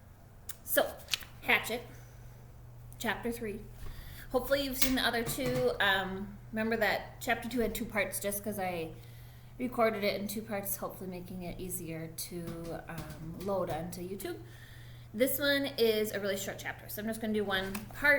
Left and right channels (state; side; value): identical; both; correlation 1.00